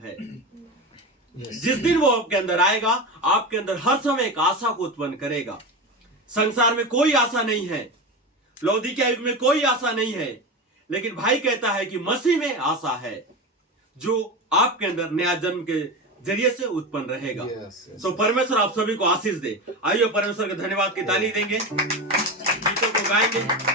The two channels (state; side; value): normal; both; correlation 0.22